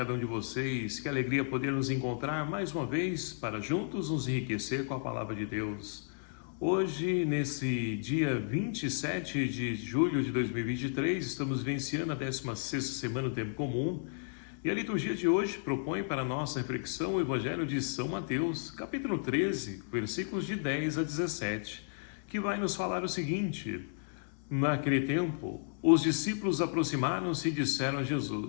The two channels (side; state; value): right; silent; digital silence